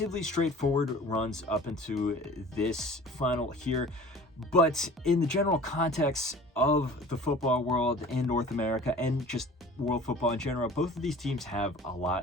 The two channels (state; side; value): normal; both; correlation 0.44